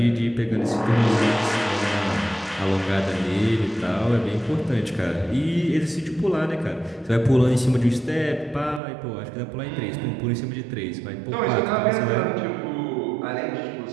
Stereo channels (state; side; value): drops out; left; at 8.8 s